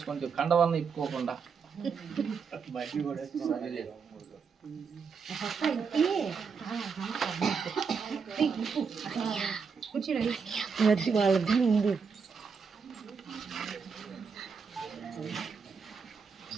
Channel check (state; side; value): quieter; left; 5.7 dB